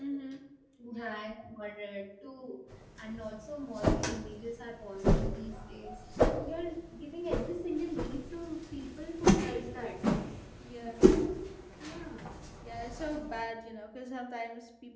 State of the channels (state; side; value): identical; both; correlation 1.00